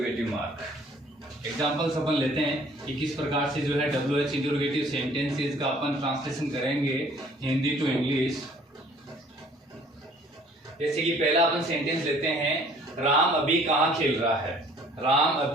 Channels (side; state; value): both; normal; correlation 0.55